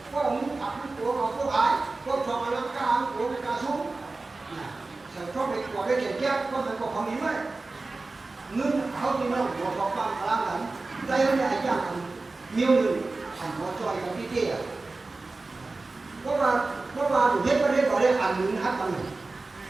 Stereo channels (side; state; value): left; quieter; 3.5 dB